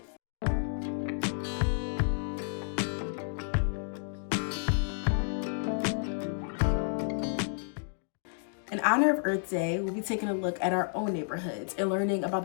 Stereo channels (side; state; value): right; silent; digital silence